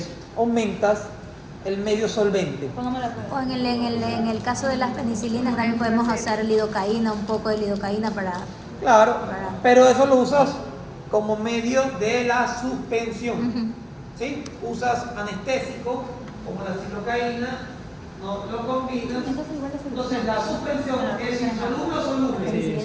aumentas el medio solvente. Póngame la prueba. O en el caso de las penicilinas también podemos usar lidocaína, un poco de lidocaína para... Claro, pero eso lo usas como medio de la suspensión. ¿Sí? Usas anestésico, como la lidocaína, no lo combinas. Entonces igual es Entonces la suspensión es insoluble o soluble. Sí,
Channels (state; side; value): identical; both; correlation 1.00